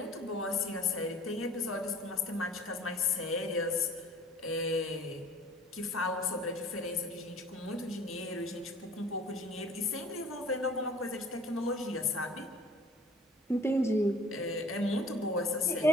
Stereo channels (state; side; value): normal; both; correlation 0.48